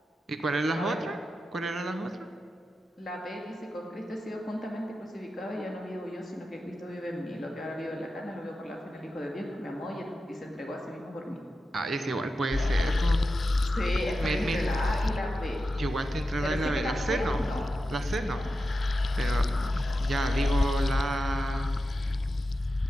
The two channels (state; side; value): normal; both; correlation 0.91